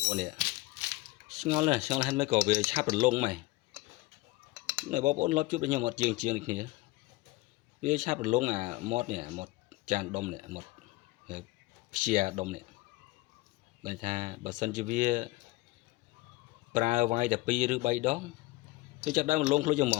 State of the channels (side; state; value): right; quieter; 20.7 dB